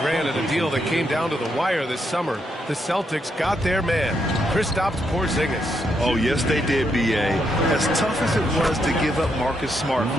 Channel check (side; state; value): both; normal; correlation 0.79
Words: granted, a deal that came down to the wire this summer. The Celtics got their man, Kristaps Porzingis. Oh, yes, they did, B.A. As tough as it was to give up Marcus Smart